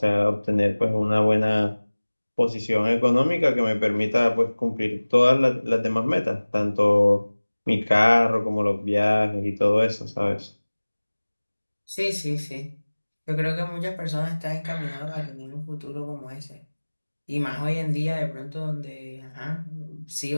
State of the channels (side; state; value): both; inverted; correlation -1.00